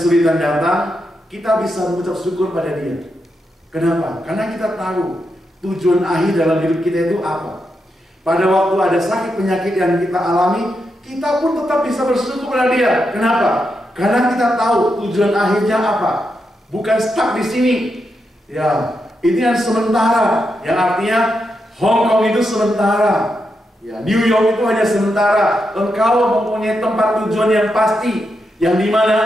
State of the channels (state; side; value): normal; both; correlation 0.84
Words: datang, kita bisa mengucap syukur pada Dia. Kenapa? Karena kita tahu tujuan akhir dalam hidup kita itu apa. Pada waktu ada sakit penyakit yang kita alami, kita pun tetap bisa bersyukur pada Dia. Kenapa? Karena kita tahu tujuan akhirnya apa. Bukan stuck di sini. Ya, ini yang sementara. Yang artinya Hong Kong itu sementara. Ya, New York itu hanya sementara. Engkau mempunyai tempat tujuan yang pasti, yang